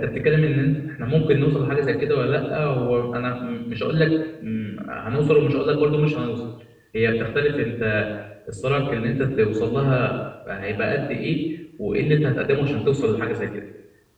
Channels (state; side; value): identical; both; correlation 1.00